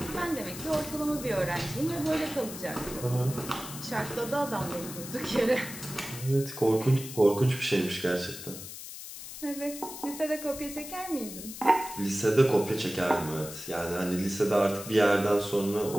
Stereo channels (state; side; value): noise; left; hiss, 11 dB below the sound